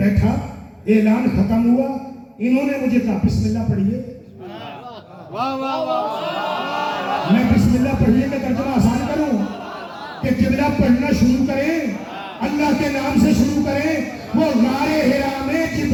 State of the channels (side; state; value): both; identical; correlation 1.00